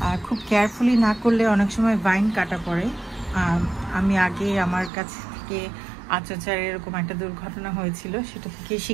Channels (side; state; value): left; drops out; at 4.9 s